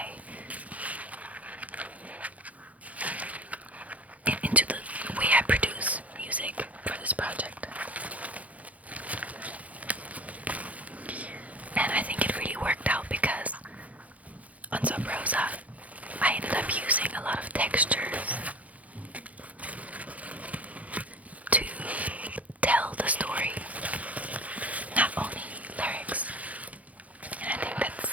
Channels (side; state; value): left; late; 0.070 ms